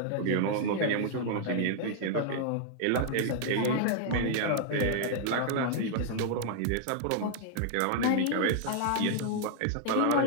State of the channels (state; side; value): different; both; correlation 0.00